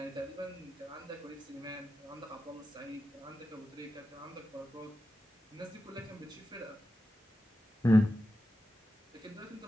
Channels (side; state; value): both; normal; correlation 0.91